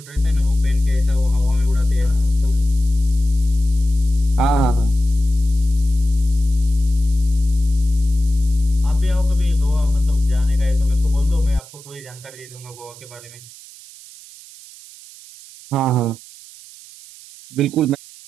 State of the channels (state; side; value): noise; right; hiss, 20 dB below the sound